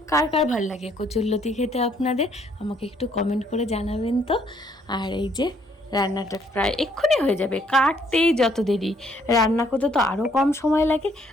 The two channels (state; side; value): normal; both; correlation 0.67